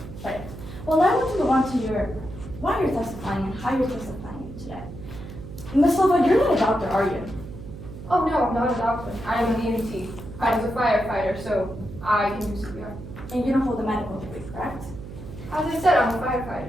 Right. Well, now I want to move on to why you're testifying and how you're testifying today. Ms. Silva, you're not a doctor, are you? Oh no, I'm not a doctor. I am an EMT. I was a firefighter, so I can do CPR. And you don't hold a medical degree, correct? As I said, I'm a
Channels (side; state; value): right; noise; hum, 12 dB below the sound